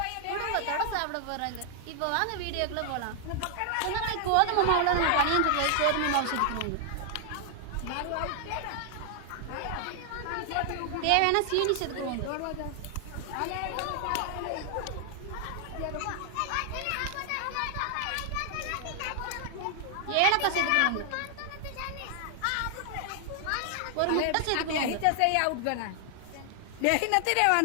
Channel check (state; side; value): different; both; correlation 0.00